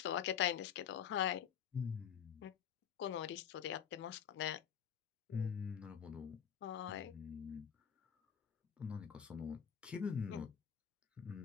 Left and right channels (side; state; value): right; quieter; 8.4 dB